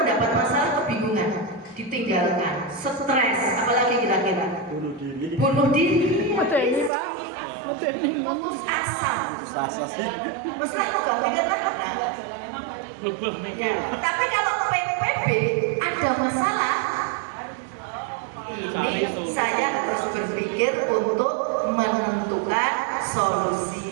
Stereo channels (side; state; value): left; drops out; at 6.9 s